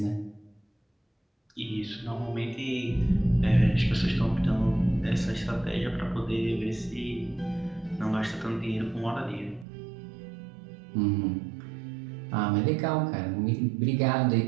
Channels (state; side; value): drops out; left; at 9.7 s